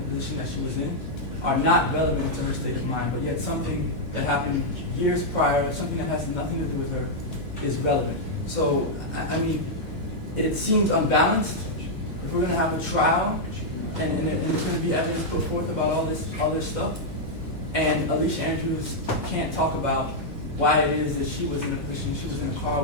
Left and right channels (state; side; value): normal; both; correlation -0.04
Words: position that she was in are not relevant to her state of mind. But yet something that happened years prior, something that has nothing to do with her, is relevant. So, I mean, it seems unbalanced. If we're going to have a trial, and there's going to be evidence put forth about all this stuff, and Alicia Andrews can't talk about why it is that she was in a position, she was in a car